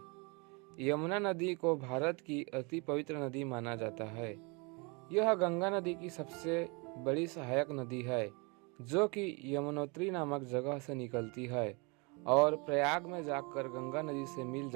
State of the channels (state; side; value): quieter; left; 30.2 dB